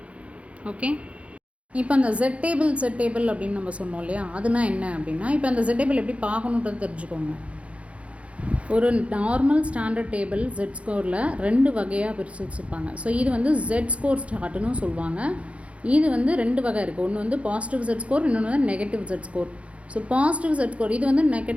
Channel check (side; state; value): left; late; 0.063 ms